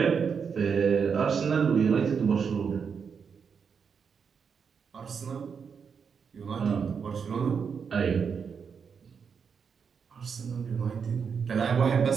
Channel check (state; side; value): quieter; left; 6.3 dB